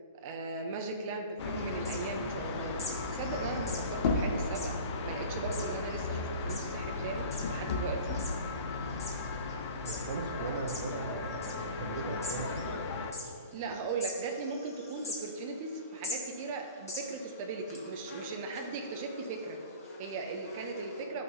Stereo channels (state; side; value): inverted; both; correlation -0.40